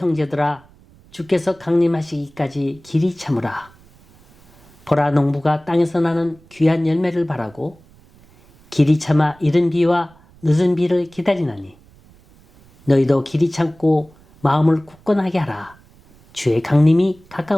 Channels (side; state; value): right; noise; rumble, 28 dB below the sound